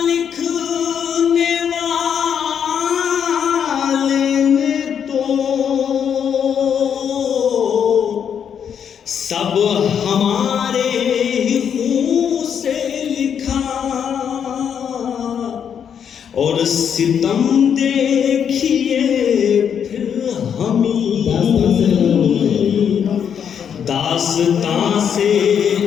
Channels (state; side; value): quieter; right; 8.0 dB